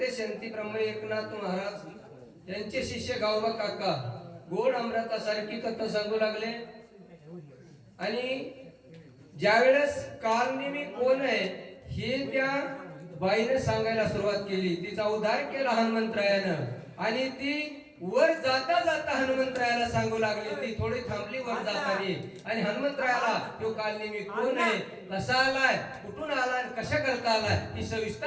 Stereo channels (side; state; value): both; identical; correlation 1.00